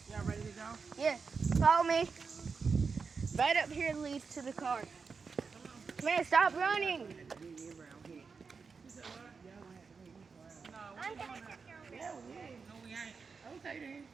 Y'all ready to go? Yeah, follow me. Right up here leads to the car. Man, stop running. Yeah, we ain't. No, we ain't. Okay, then.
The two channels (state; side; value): quieter; left; 5.1 dB